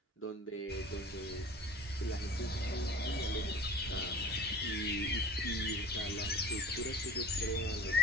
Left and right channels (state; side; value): normal; both; correlation 0.45